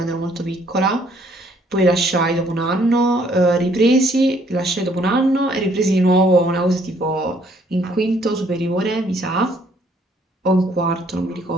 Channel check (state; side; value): normal; both; correlation 0.64